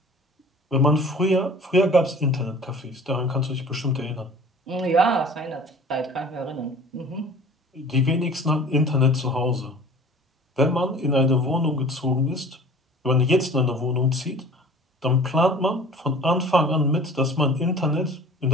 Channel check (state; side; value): normal; both; correlation 0.45